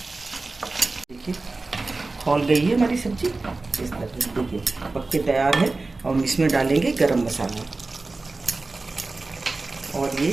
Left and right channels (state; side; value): quieter; left; 3.5 dB